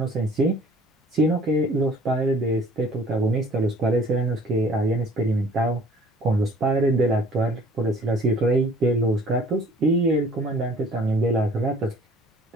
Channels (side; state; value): both; normal; correlation 0.52